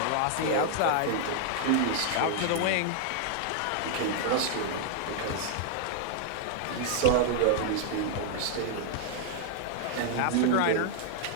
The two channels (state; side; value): different; both; correlation -0.01